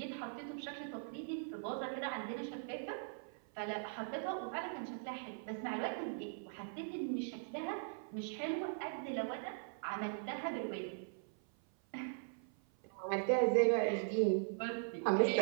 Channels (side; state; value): left; silent; 51 dB below the other